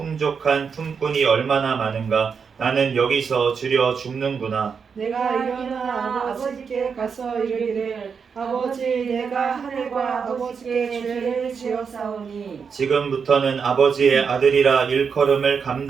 품꾼이 얼마나 많은가. 나는 여기서 주려 죽는구나. 내가 일어나 아버지께 가서 이르기를 아버지 내가 하늘과 아버지께 죄를 지었사오니 지금부터는 아버지의 아들이라 일컬음을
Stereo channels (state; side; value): quieter; left; 6.1 dB